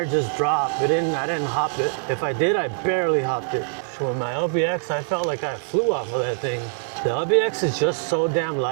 just drop. I didn't hop it. If I did, I barely hopped it. So with my LBX, I felt like I flew off of that thing. The LBX is just so damn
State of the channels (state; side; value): silent; left; digital silence